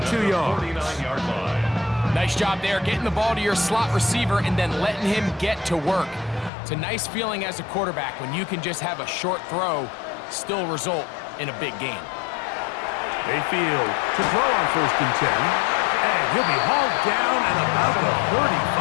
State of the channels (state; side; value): drops out; right; at 6.5 s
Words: yards. 49-yard line. Nice job there, getting the ball to your slot receiver and then letting him get to work. It's a nice feeling as a quarterback when you can just have a short throw still result in a big gain. Mayfield to throw on 1st and 10. And he'll be hauled down at about the